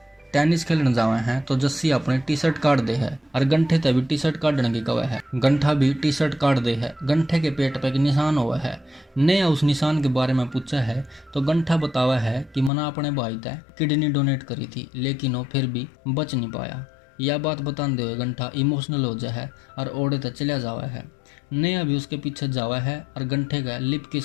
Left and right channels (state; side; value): drops out; right; at 12.7 s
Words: टेनिस खेलने जावे हैं तो जस्सी अपनी टी शर्ट काट दे है और गंठे तक भी टी शर्ट काटने की कवा है। गंठा भी टी शर्ट काट दे है। गंठे के पेट पे एक निशान हुआ है। नेहा उस निशान के बारे में पूछा है तो गंठा बतावा है कि मना अपने भाई तय किडनी डोनेट करी थी, लेकिन वो फिर भी बच नहीं पाया। यह बात बताते हुए गंठा इमोशनल हो जाए और ओढ़े तक चला जावा है। नेहा भी उसके पीछे जावा है और गंठे का लिप